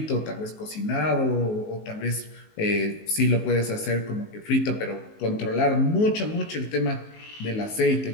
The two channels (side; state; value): right; late; 19 ms